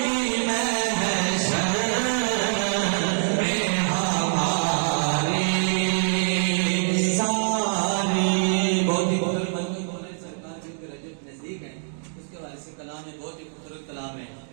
महशर में हमारी सारी। बहुत ही खूबसूरत मौलाना सरकार जो कि रजब नजदीक है, उसके वाले से कलाम है, बहुत ही खूबसूरत कलाम है।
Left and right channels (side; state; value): left; silent; digital silence